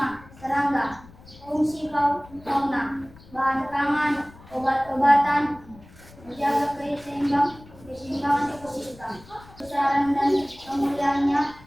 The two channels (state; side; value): noise; left; rumble, 22 dB below the sound